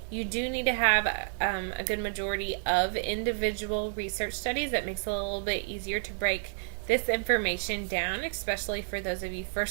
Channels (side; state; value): left; silent; 58 dB below the other